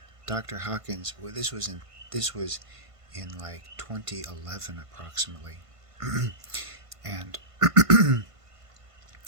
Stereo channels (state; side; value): late; left; 1.5 ms